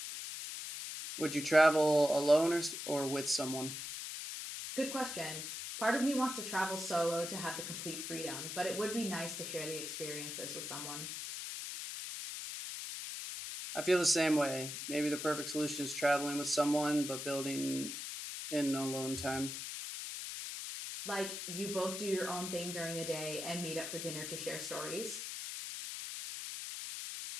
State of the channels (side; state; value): left; noise; hiss, 6 dB below the sound